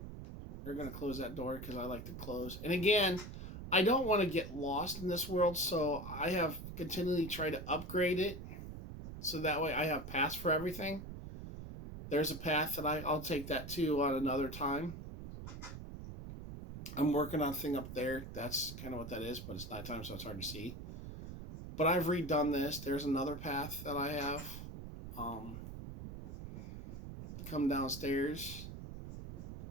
They're going to close that door because I like to close. And again, I don't want to get lost in this world, so I have continually tried to upgrade it so that way I have paths for everything. There's a path that I'll take that too on another time. I'm working on a thing up there. That's kind of what that is, but it's nighttime, so it's hard to see. But I've redone this. There's another path that I have. Come downstairs.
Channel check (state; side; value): noise; right; rumble, 10 dB below the sound